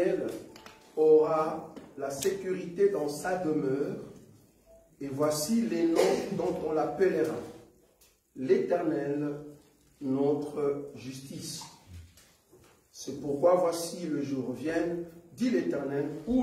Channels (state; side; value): identical; both; correlation 1.00